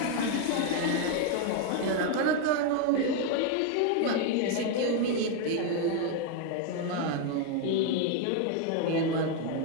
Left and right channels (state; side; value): different; both; correlation 0.01